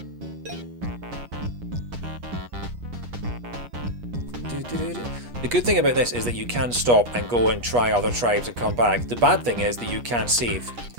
The good thing about this is that you can stop and go and try other tribes and come back. The bad thing is that you can't save.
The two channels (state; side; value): late; left; 8.3 ms